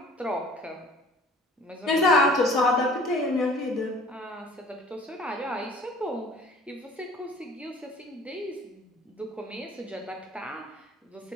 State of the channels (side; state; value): both; normal; correlation 0.49